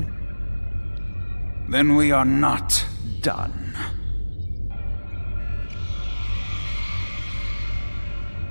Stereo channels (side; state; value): both; inverted; correlation -1.00